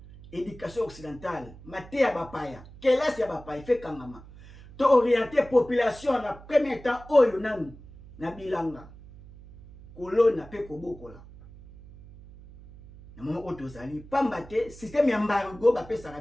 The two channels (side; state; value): right; noise; hum, 19 dB below the sound